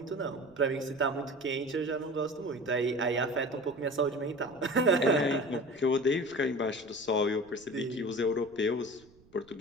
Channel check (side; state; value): right; noise; rumble, 28 dB below the sound